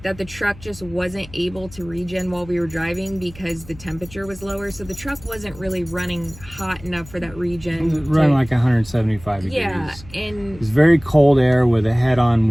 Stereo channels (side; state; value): left; noise; hum, 19 dB below the sound